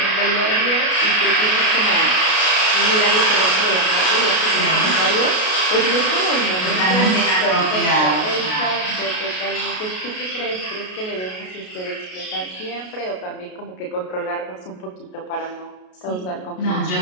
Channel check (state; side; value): late; right; 33 ms